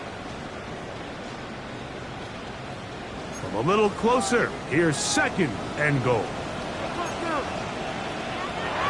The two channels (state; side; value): identical; both; correlation 1.00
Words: From a little closer, here's second and goal.